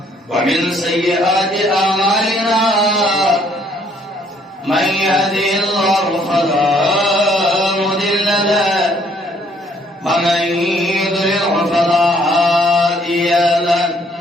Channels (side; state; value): both; normal; correlation 0.65